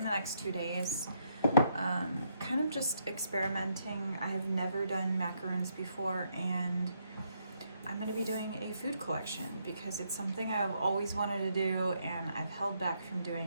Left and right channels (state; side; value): inverted; both; correlation -0.75